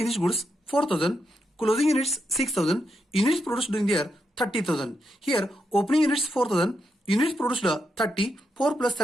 goods 4,000. Closing units 6,000. Units produced during the year 30,000. Here opening units 4,000. Units produced 30. 4 plus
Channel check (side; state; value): both; normal; correlation 0.83